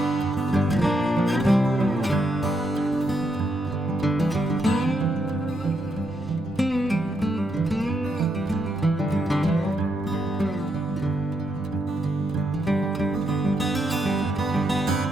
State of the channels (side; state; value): both; normal; correlation 0.79